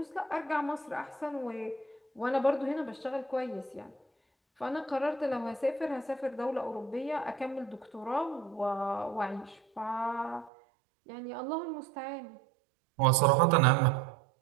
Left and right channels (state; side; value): drops out; left; at 10.5 s